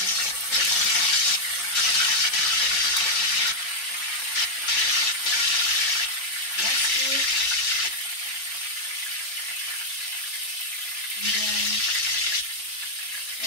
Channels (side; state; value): right; late; 3.2 ms